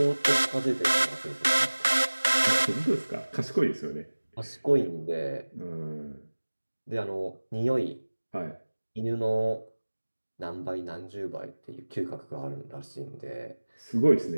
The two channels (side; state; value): both; inverted; correlation -1.00